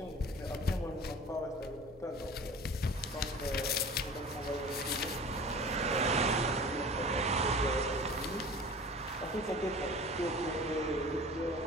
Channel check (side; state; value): both; normal; correlation 0.41